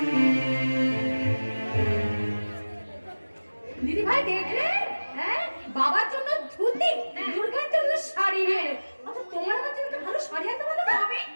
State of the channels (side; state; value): both; inverted; correlation -1.00